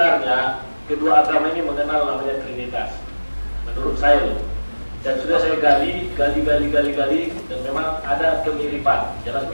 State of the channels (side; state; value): both; inverted; correlation -1.00